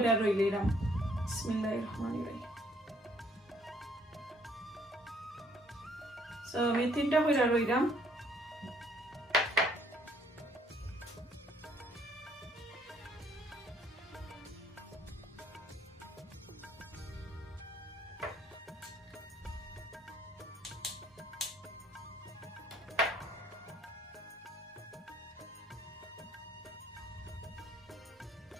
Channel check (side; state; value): both; normal; correlation 0.64